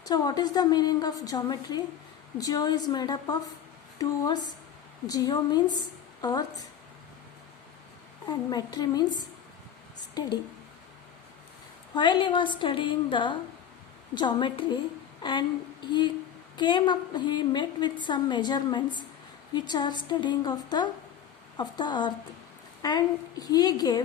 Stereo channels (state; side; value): quieter; right; 9.2 dB